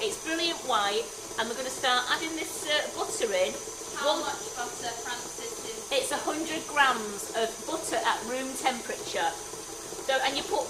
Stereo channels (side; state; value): both; identical; correlation 1.00